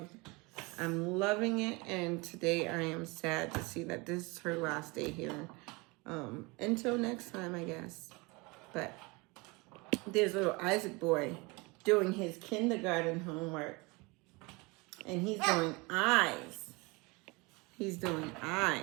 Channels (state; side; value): quieter; left; 26.2 dB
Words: loving it, and today I am sad to see that this is her last day here. Until next time, I guess. But there's little Isaac boy doing his kindergarten homework, and he's doing eyes. He's doing